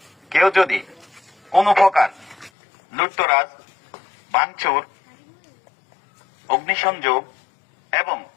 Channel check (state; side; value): drops out; right; at 2.5 s